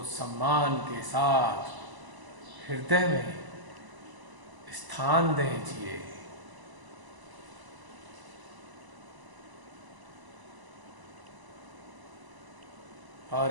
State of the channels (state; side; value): late; left; 1.0 ms